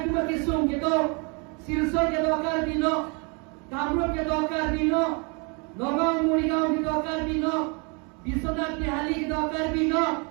tu mati sung ke do silsor ke do karbi no kamrup ke do karbi no nogong murigaon ke do karbi no Biswanath Bihali ke do karbi no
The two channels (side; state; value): left; quieter; 33.7 dB